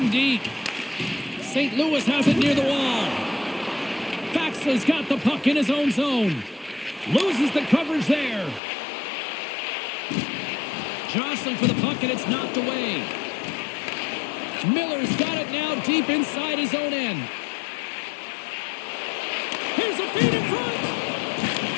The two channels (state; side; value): drops out; right; at 8.6 s